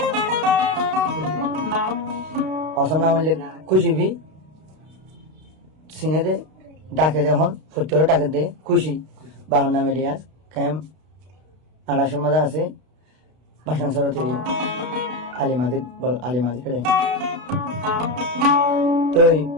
অসম নাম হলে খুশি সিনে দে ডাকে এখন 70 ডাকে দে খুশি। বাবার নাম ইলিয়াস কায়েম। আড়াইশের মাঝে আছে ভাষণ সরতে আলিমাজি খেলে তো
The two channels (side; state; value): left; late; 32 ms